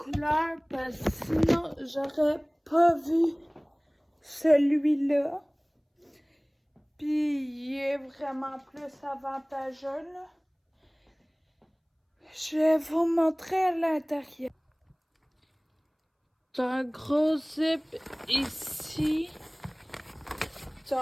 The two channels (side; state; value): both; identical; correlation 1.00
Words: parce que sinon j'aurais pas vu celui-là. Puis il est vraiment plus avantageux là. Je vais vous montrer à l'intérieur. T'as un gros zip ici.